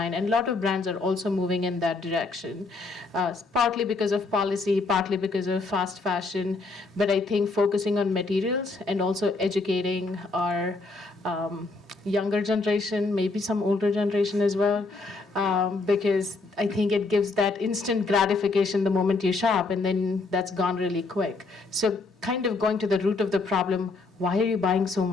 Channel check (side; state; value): right; quieter; 3.7 dB